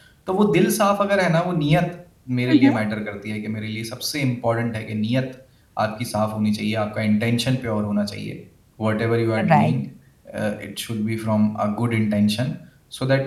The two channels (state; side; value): identical; both; correlation 1.00